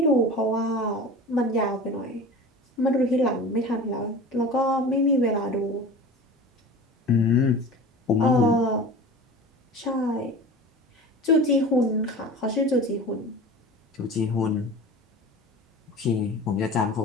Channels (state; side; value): normal; both; correlation 0.36